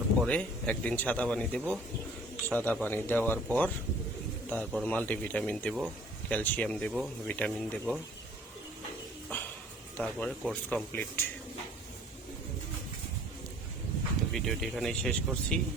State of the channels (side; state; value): both; normal; correlation 0.53